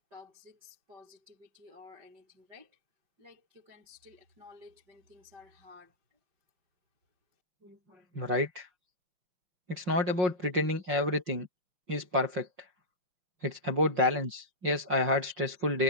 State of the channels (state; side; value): late; left; 5.5 ms